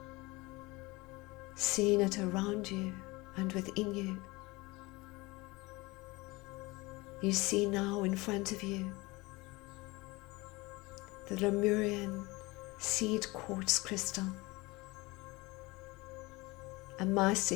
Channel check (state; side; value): quieter; right; 23.0 dB